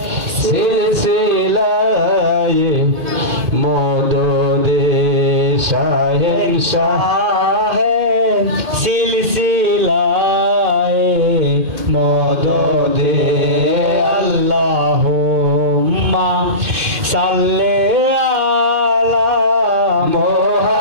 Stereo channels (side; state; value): left; late; 2.6 ms